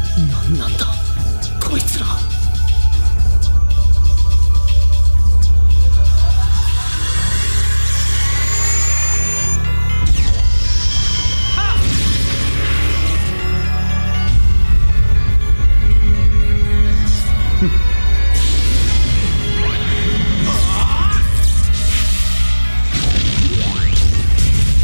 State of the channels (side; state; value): both; inverted; correlation -1.00